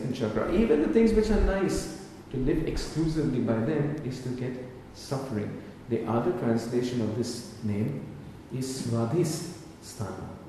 chakra, even the things which are nice, to live exclusively by them is to get suffering. The other translation of this name is Swadhisthana.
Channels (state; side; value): identical; both; correlation 1.00